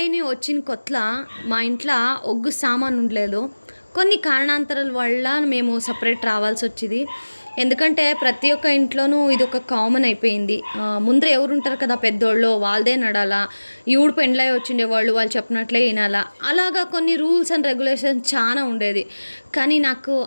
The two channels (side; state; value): both; inverted; correlation -1.00